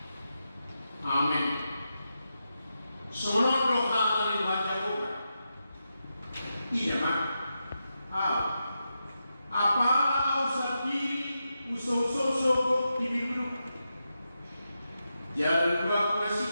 Amin. Semua doa yang dibaca Tuhan. Iya mak. Apalah usah diri usah-usah diri jalan dua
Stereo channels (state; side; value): inverted; both; correlation -0.88